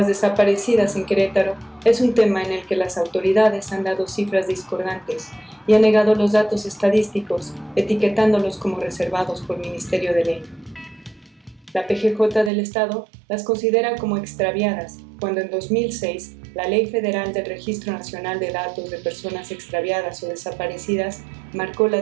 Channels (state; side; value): drops out; left; at 12.5 s